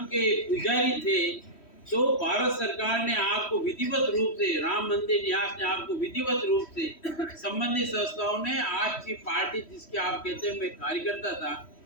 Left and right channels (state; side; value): late; right; 3.1 ms